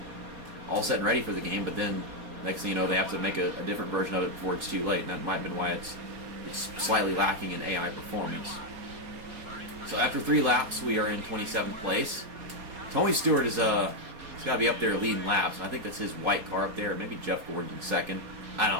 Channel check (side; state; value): left; late; 4.2 ms